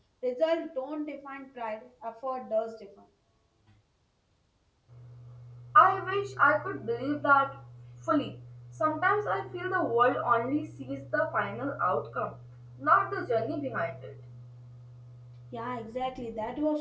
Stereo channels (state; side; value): identical; both; correlation 1.00